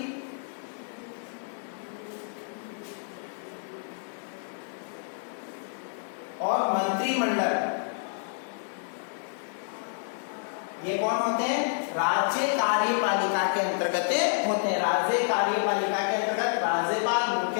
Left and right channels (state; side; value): silent; right; 59 dB below the other